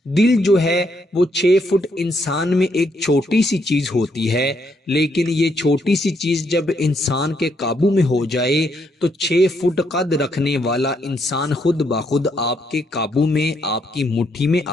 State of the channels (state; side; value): normal; both; correlation 0.75